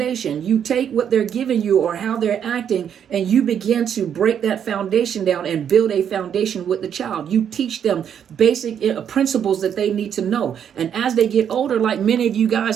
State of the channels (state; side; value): quieter; left; 8.6 dB